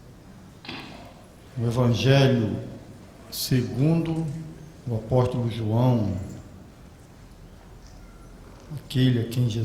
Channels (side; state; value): both; identical; correlation 1.00